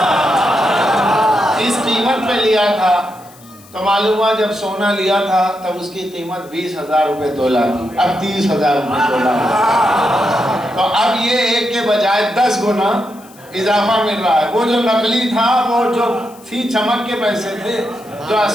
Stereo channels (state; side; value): noise; left; hiss, 25 dB below the sound